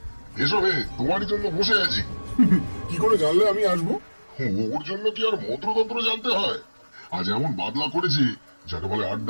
এসো হে, তোমারই জন্য বসে আছি। কি করে জানলে আমি আসবো? ওর জন্য কি আর মন্ত্রতন্ত্র জানতে হয়? আজ এমন বাদলা করেছি যাকে বলে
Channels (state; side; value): inverted; both; correlation -1.00